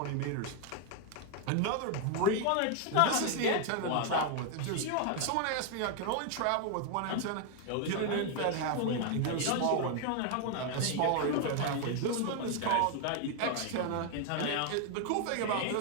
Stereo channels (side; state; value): both; different; correlation 0.00